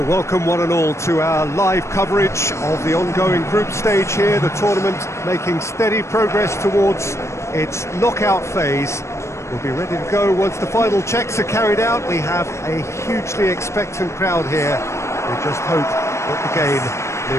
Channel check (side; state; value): right; late; 0.13 ms